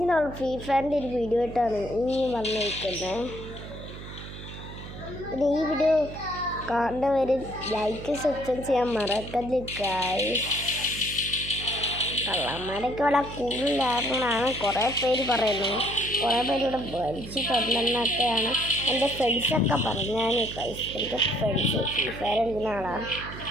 നമ്മൾ ഫ്രീ ഫയറിൻ്റെ ഒരു വീഡിയോ ആയിട്ടാണ് ഇനിയും വന്നിരിക്കുന്നത്. പിന്നെ ഈ വീഡിയോ കാണുന്നവർ ലൈക്ക് സബ്സ്ക്രൈബ് ചെയ്യാൻ മറക്കരുത് ഗായ്സ്. കള്ളന്മാരൊക്കെ വളരെ കൂടുതലാണെന്നാണ് കുറേ പേര് പറയുന്നത്. കുറേ പേര് ഇവിടെ വലിച്ചു തരണമെന്നൊക്കെയാണ് എൻ്റെ ഫ്രണ്ട്സൊക്കെ പറഞ്ഞാൽ ഗായ്സ്. എൻ്റെ ഫ്രണ്ട്സ് ഫ്രീ ഫയർ കളിക്കുന്ന ആളാണ്.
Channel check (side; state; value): right; noise; hum, 12 dB below the sound